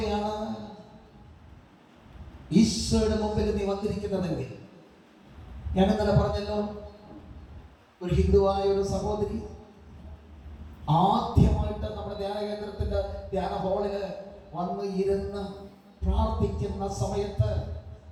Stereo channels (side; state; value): both; identical; correlation 1.00